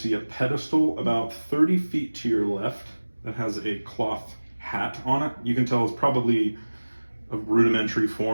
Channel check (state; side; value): inverted; both; correlation -1.00